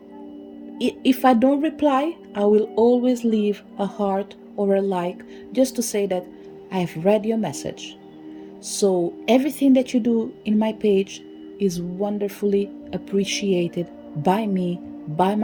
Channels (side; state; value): both; identical; correlation 1.00